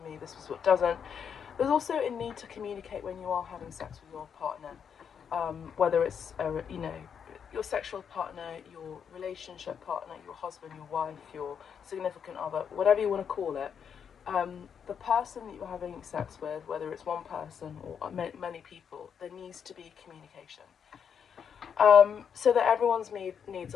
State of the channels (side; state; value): right; quieter; 7.4 dB